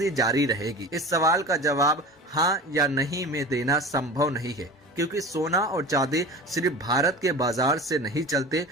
जारी रहेगी। इस सवाल का जवाब हाँ या नहीं में देना संभव नहीं है, क्योंकि सोना और चांदी सिर्फ भारत के बाजार से नहीं चलते,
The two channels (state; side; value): normal; both; correlation 0.34